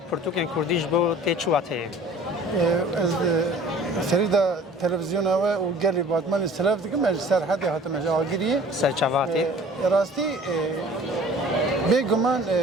پرتوکن کردیش بو تیچواته. از سریدا تلویزیون و گلی باتمان استلاف دیگه مج سرحدی هاتم جاگیری سرچواته. راستی بگمان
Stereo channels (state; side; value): normal; both; correlation 0.48